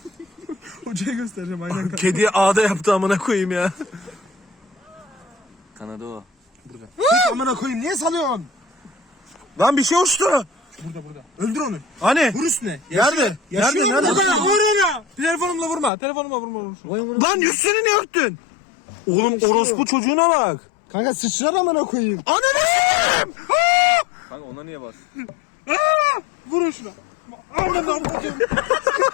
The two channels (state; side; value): drops out; right; at 15.9 s